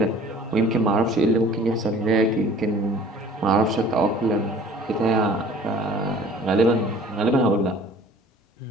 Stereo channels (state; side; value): normal; both; correlation 0.49